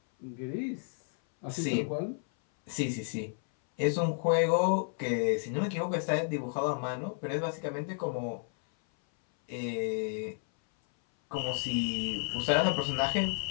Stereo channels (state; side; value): silent; right; 57 dB below the other